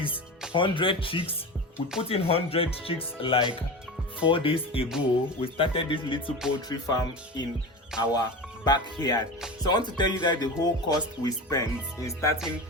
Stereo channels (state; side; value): normal; both; correlation 0.28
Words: 100 chicks. We put in 100 chicks like 4 days ago. We started this little poultry farm in our backyard. So I want to tell you guys the whole cost we spent in starting